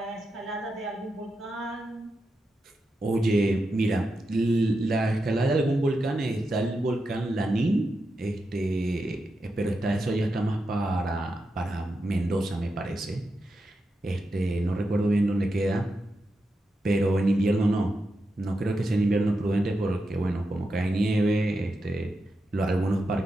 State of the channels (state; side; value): normal; both; correlation 0.87